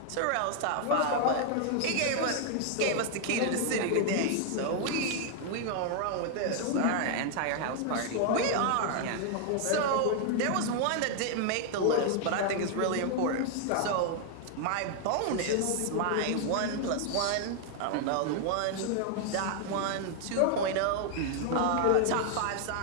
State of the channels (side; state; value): both; different; correlation 0.00